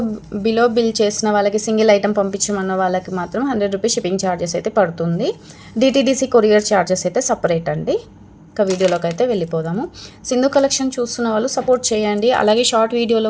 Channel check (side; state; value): both; identical; correlation 1.00